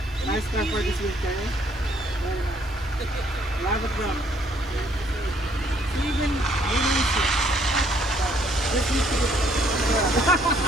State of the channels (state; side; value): normal; both; correlation 0.65